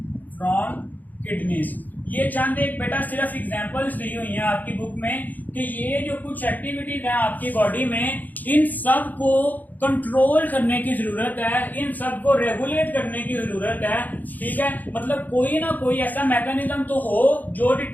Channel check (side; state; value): right; late; 0.083 ms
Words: from kidneys. ये चंद एक बेटा सिर्फ एग्जांपल्स दी हुई हैं आपकी बुक में कि ये जो कुछ एक्टिविटीज हैं आपकी बॉडी में, इन सब को कंट्रोल करने की जरूरत है, इन सब को रेगुलेट करने की जरूरत है, ठीक है। मतलब कोई ना कोई ऐसा मैकेनिज्म तो हो जो